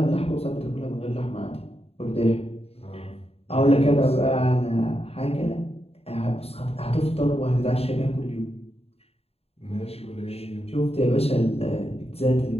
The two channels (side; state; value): right; late; 0.29 ms